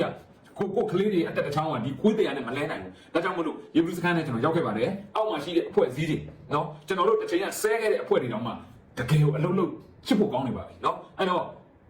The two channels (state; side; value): identical; both; correlation 1.00